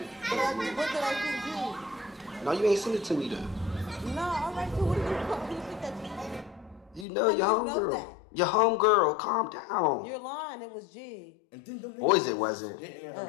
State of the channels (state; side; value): drops out; right; at 7.1 s